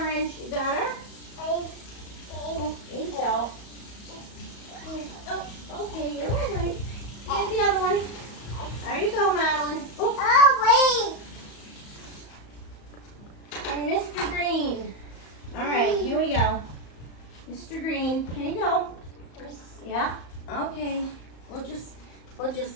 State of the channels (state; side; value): late; right; 34 ms